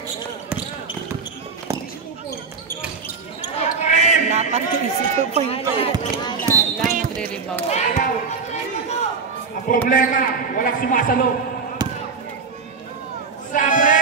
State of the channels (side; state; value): left; quieter; 5.1 dB